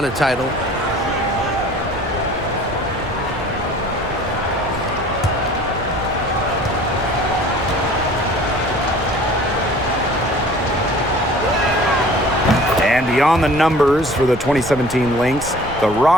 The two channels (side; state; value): right; noise; rumble, 14 dB below the sound